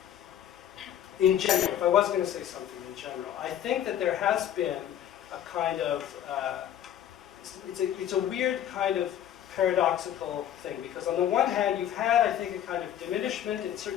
in general, if I was going to say something in general, I think that there has been a kind of it's a weird kind of paradoxical thing, because on the one hand you've had, I think, a kind of diminishment in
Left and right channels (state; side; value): quieter; right; 10.5 dB